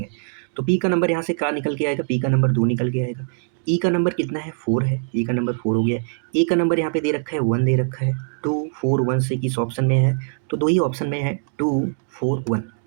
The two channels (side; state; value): left; silent; digital silence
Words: है। तो पी का नंबर यहाँ से क्या निकल के आएगा, पी का नंबर 2 निकल के आएगा। ई का नंबर कितना है, 4 है, ई का नंबर 4 हो गया। ए का नंबर यहाँ पे दे रखा है 1 दे रखा है, 2 4 1 से किस ऑप्शन में है, तो 2 ही ऑप्शन में है, 2 4 1।